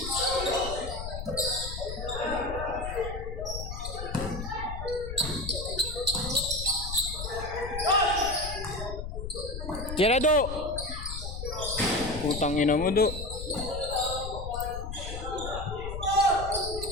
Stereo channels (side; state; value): left; noise; rumble, 7 dB below the sound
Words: Tira do! Putang ina mo do.